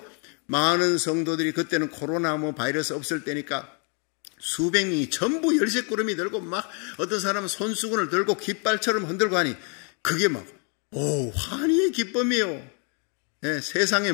많은 성도들이, 그때는 코로나 바이러스 없을 때니까 수백 명이 전부 열쇠꾸러미 들고, 막 어떤 사람은 손수건을 들고 깃발처럼 흔들고 하니 그게 막 환희의 기쁨이에요. 세상에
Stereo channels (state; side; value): quieter; right; 38.1 dB